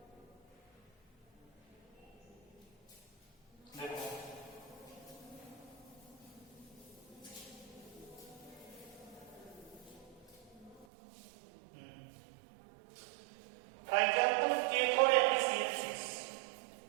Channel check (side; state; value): left; drops out; at 10.9 s